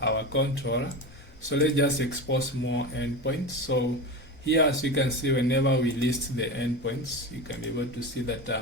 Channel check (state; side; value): normal; both; correlation 0.25